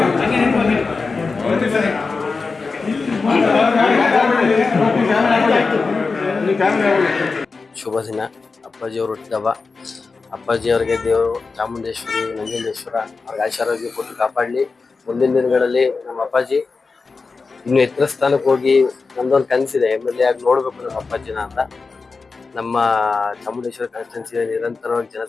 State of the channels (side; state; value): right; quieter; 4.3 dB